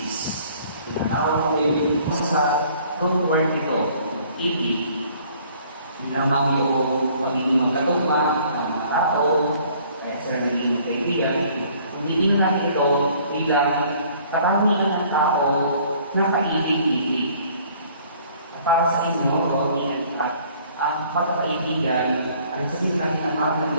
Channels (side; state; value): both; inverted; correlation -0.57